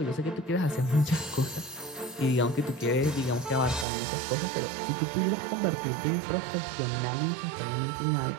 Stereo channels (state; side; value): drops out; left; at 3.9 s